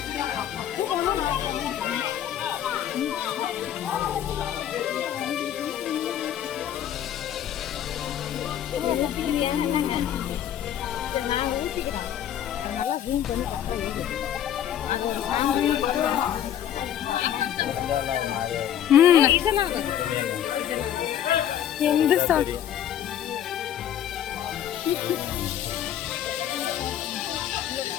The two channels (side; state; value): right; quieter; 10.5 dB